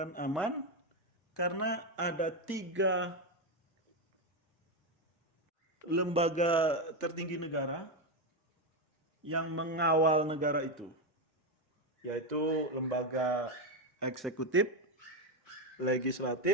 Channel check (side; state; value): both; normal; correlation 0.08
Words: aman, karena ada 3 lembaga tertinggi negara yang mengawal negara itu, yaitu lembaga eksekutif,